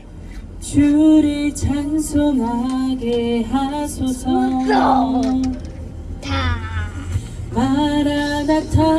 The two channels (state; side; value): identical; both; correlation 1.00